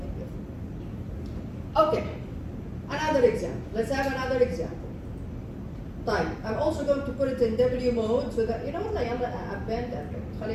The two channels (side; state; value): both; identical; correlation 1.00